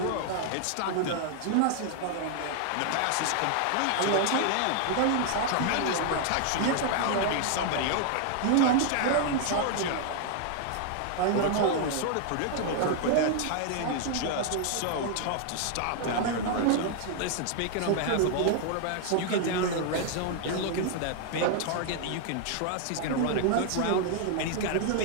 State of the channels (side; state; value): both; different; correlation 0.00